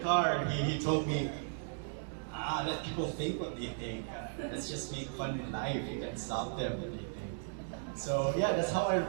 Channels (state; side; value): silent; left; digital silence